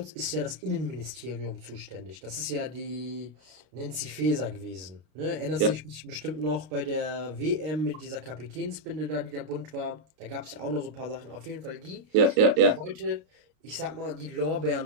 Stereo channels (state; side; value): late; left; 32 ms